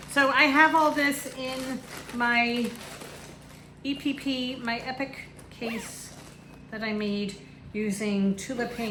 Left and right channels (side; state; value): both; identical; correlation 1.00